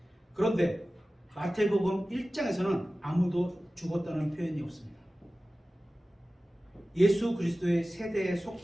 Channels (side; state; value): both; normal; correlation 0.96